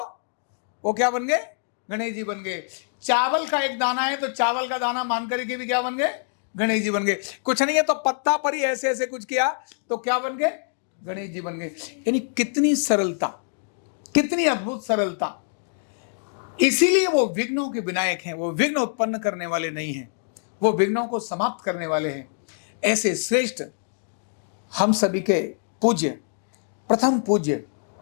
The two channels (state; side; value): silent; right; digital silence